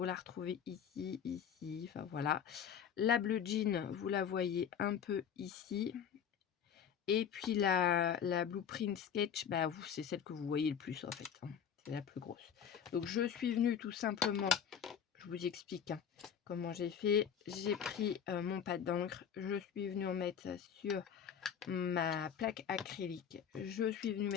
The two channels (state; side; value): quieter; right; 8.1 dB